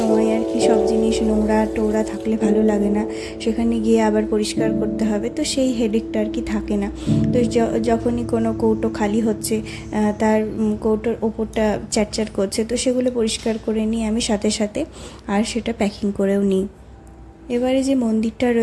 আর কি সব জিনিস নোংরা টোংরা থাকলে ভালো লাগে না, সেখানে গিয়ে আবার পরিষ্কার করতে হবে, তো সেই হেডেকটা আর কি থাকে না। তো যখনই কোনো কৌটো খালি হচ্ছে, তার কৌটোর ওপরটা চ্যাটচ্যাট করছে, তো সেগুলো পরিষ্কার করে নিই আমি সাথে সাথে, আর সেটা প্যাকিং করেও নিই। এবারে যে মন্দিরটা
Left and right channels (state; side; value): identical; both; correlation 1.00